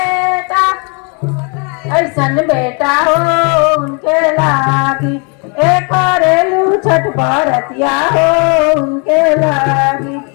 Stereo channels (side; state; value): right; quieter; 35.2 dB